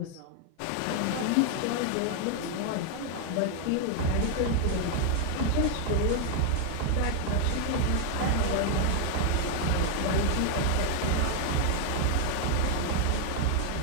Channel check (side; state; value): both; different; correlation 0.00